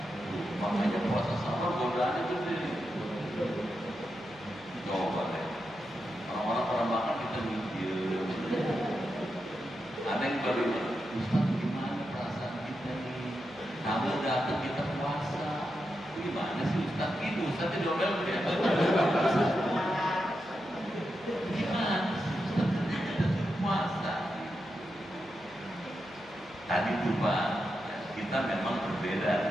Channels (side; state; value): right; noise; hum, 26 dB below the sound